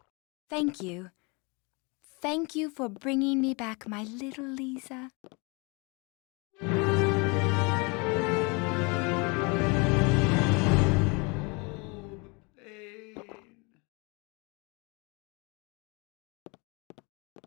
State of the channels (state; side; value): quieter; right; 29.8 dB